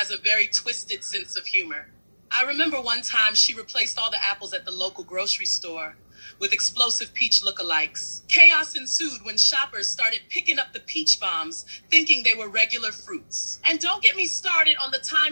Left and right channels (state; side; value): inverted; both; correlation -1.00